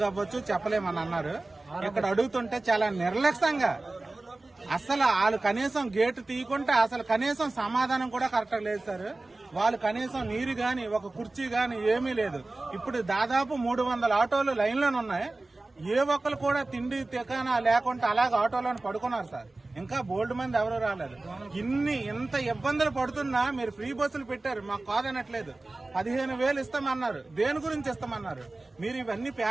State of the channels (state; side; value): quieter; left; 3.1 dB